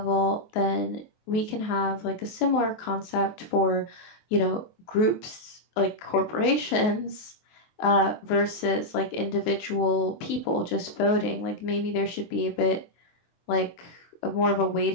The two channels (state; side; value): late; right; 23 ms